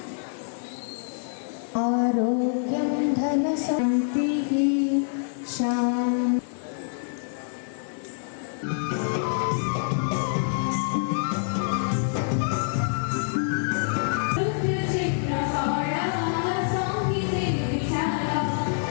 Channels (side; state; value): right; silent; digital silence